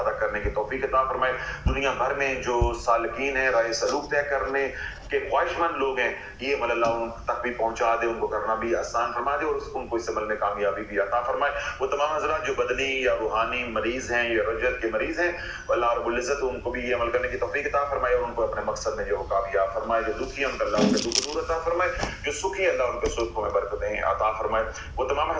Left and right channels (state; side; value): identical; both; correlation 1.00